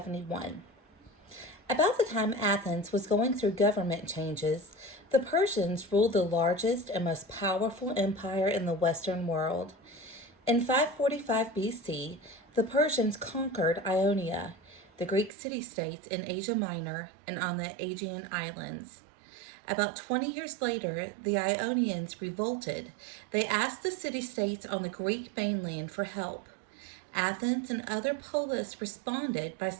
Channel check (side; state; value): left; drops out; at 15.3 s